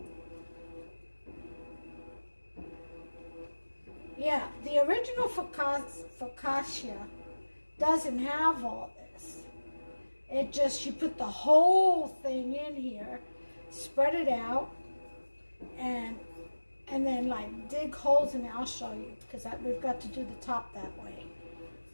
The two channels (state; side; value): inverted; both; correlation -1.00